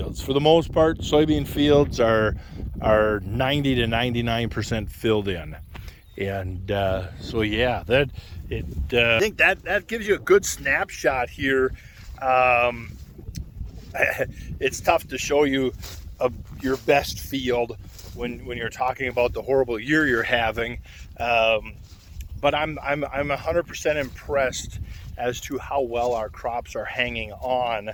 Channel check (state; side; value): identical; both; correlation 1.00